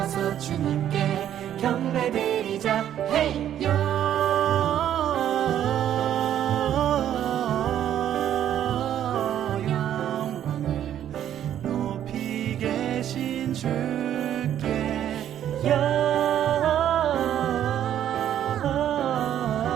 주님께 경배드리자. 헤이요. 영광을 높이 계신 주께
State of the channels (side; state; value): left; quieter; 10.7 dB